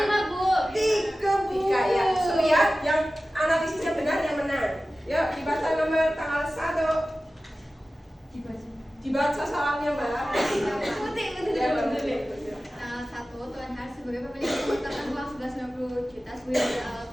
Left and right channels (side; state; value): both; normal; correlation 0.96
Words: 5 Bu. 3 ya. So ya, yang analisisnya benar yang menang. Yuk dibaca nomor tanggal 1. Dibaca salamnya Mbak. Ya, Mbak Muti. Tanggal 1, Tuan Har sebagai pemilik mengumpulkan uang 1190 juta sebagai modal awal